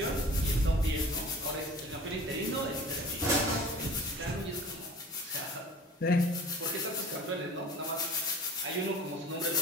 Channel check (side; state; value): both; normal; correlation 0.43